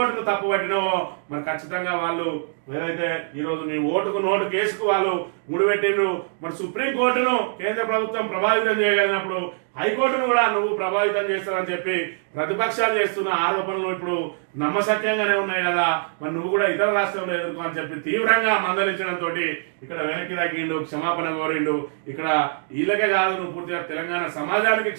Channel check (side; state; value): left; silent; digital silence